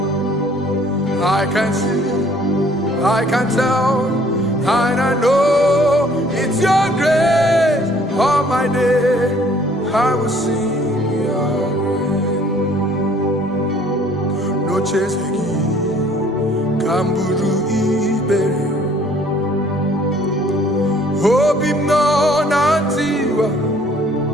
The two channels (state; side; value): normal; both; correlation 0.58